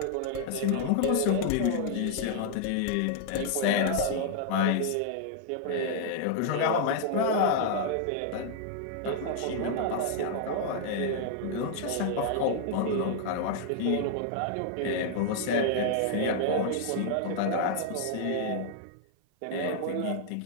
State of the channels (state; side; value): different; both; correlation -0.01